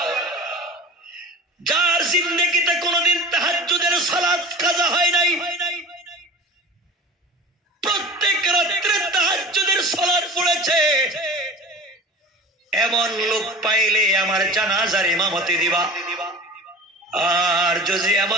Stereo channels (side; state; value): both; normal; correlation 0.36